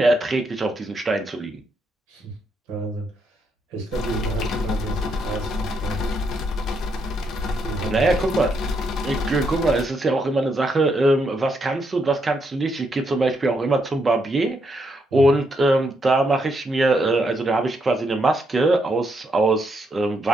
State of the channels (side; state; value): both; normal; correlation 0.78